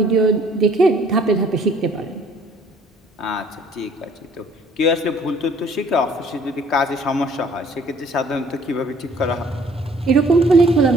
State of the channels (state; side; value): normal; both; correlation 0.58